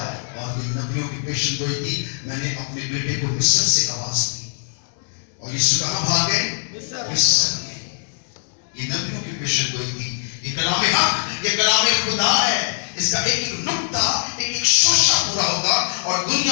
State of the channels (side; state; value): right; silent; 64 dB below the other